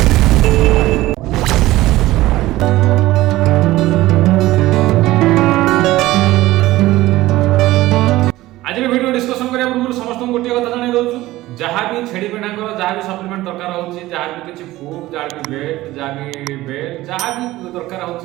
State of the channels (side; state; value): left; quieter; 17.1 dB